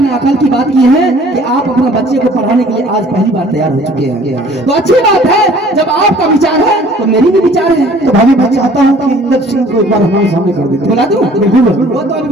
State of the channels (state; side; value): normal; both; correlation 0.53